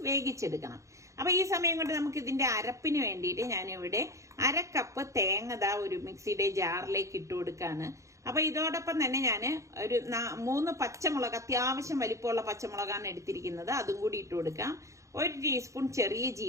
വേവിച്ചെടുക്കണം. അപ്പൊ ഈ സമയം കൊണ്ട് നമുക്ക് ഇതിന്റെ അരപ്പിന് വേണ്ടിയിട്ട് ഞാനിവിടെ 1/2 കപ്പ് തേങ്ങ ഒരു മിക്സിയുടെ ജാറിലേക്ക് ഇട്ട് കൊടുക്കാണ്. അപ്പൊ ഇതോടൊപ്പം തന്നെ ഞാൻ ഒരു 3 പച്ചമുളക്, അത്യാവശ്യം വലിപ്പമുള്ള പച്ചമുളകാണ് എടുത്തിരിക്കുന്നത്, അതും കൂടി ഇട്ട് കൊടുക്കാം. 1 ടീസ്പൂൺ ചെറിയ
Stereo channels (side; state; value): left; late; 0.15 ms